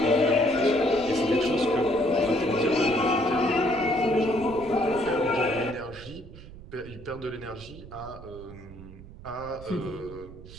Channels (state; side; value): noise; right; rumble, 16 dB below the sound